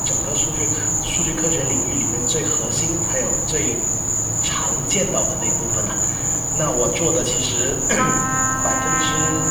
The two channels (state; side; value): identical; both; correlation 1.00